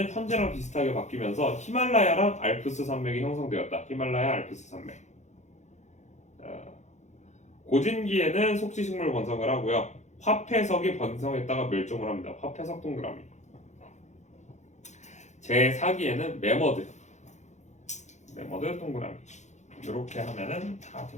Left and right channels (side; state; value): right; late; 0.34 ms